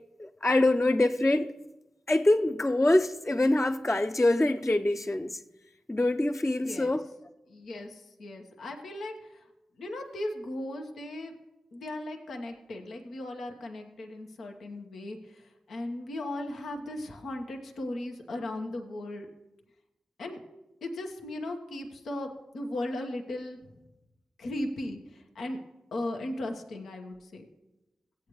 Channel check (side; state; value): both; normal; correlation 0.95